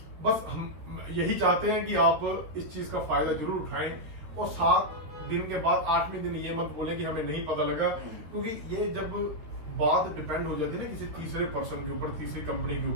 बस हम यही चाहते हैं कि आप इस चीज का फायदा जरूर उठाएं, और 7 दिन के बाद 8वें दिन ये मत बोले कि हमें नहीं पता लगा, क्योंकि ये जब बात डिपेंड हो जाती है ना किसी तीसरे पर्सन के ऊपर, तीसरी कंपनी के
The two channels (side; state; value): left; late; 13 ms